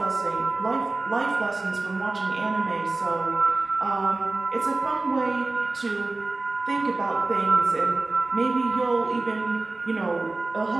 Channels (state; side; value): quieter; left; 3.3 dB